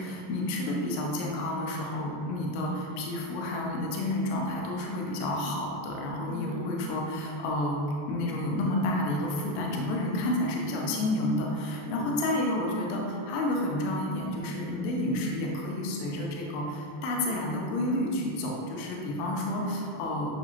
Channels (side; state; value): right; late; 28 ms